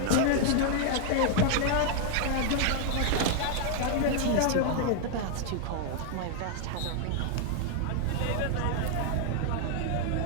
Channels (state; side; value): different; both; correlation 0.00